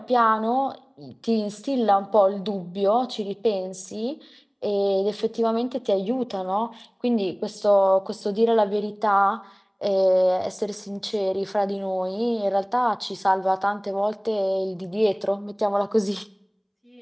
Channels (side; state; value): both; identical; correlation 1.00